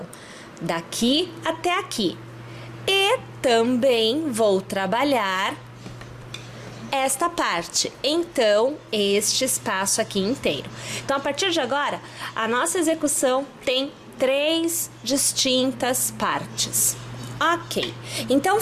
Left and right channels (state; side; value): identical; both; correlation 1.00